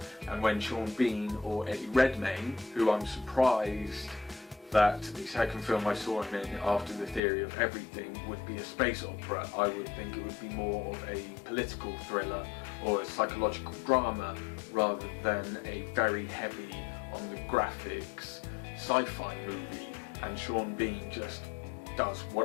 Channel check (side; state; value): right; drops out; at 7.2 s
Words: And when Sean Bean or Eddie Redmayne, who I'm surprised that the second film I saw him in after The Theory of Everything would be a space opera, I would think it would be more of a political thriller or a psychological drama rather than a very heavy on the graphics, sci-fi movie, and Sean Bean just does